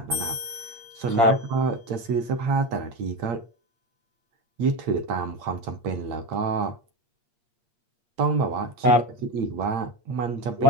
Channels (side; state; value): left; late; 8.6 ms